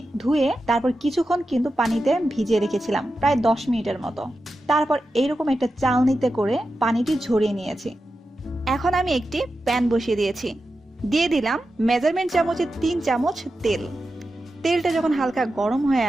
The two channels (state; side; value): normal; both; correlation 0.91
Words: ধুয়ে তারপর কিছুক্ষণ কিন্তু পানিতে ভিজিয়ে রেখেছিলাম, প্রায় 10 মিনিটের মতো। তারপর এইরকম একটা চালনিতে করে পানিটি ঝরিয়ে নিয়েছি। এখন আমি একটি প্যান বসিয়ে দিয়েছি। দিয়ে দিলাম মেজারমেন্ট চামচে 3 চামচ তেল। তেলটা যখন হালকা গরম হয়ে